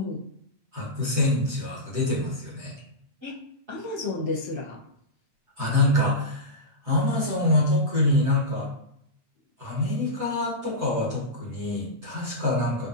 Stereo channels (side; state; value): left; late; 7.9 ms